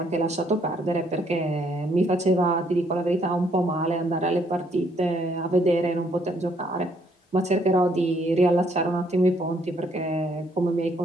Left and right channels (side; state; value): both; normal; correlation 0.69